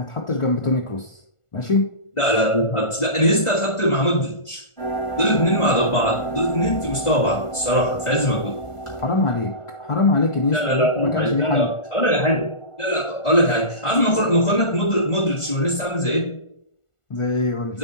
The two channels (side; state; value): right; late; 1.4 ms